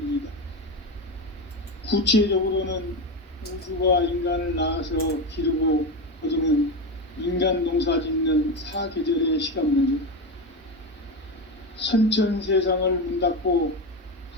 구체적으로는 우주가 인간을 낳아서 기르고 거두는 인간 농사 짓는 사계절의 시간 문제. 선천 세상을 문 닫고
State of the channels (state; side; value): normal; both; correlation 0.17